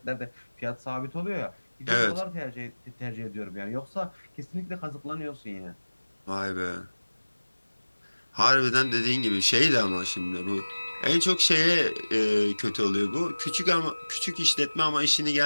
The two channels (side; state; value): both; inverted; correlation -1.00